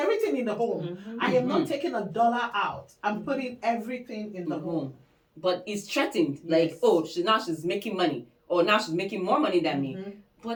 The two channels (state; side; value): identical; both; correlation 1.00